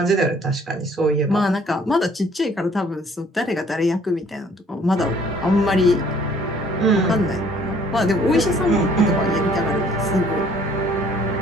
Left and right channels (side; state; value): both; normal; correlation 0.58